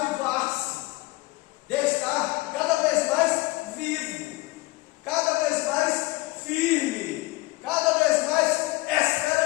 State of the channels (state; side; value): quieter; right; 21.3 dB